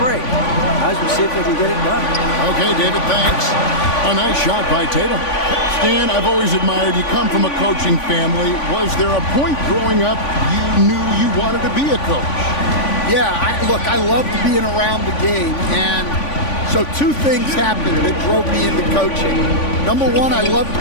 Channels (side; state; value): right; late; 3.5 ms